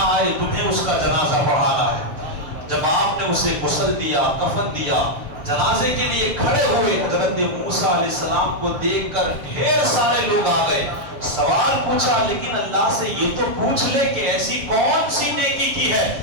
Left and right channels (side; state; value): left; late; 7.2 ms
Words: آئے تمہیں اس کا جنازہ پڑھانا ہے۔ جب آپ نے اسے غسل دیا، کفن دیا، جنازے کے لیے کھڑے ہوئے، حضرت موسیٰ علیہ السلام کو دیکھ کر ڈھیر سارے لوگ آ گئے۔ سوال پوچھا، لیکن اللہ سے یہ تو پوچھ لے کہ ایسی کون سی نیکی کی ہے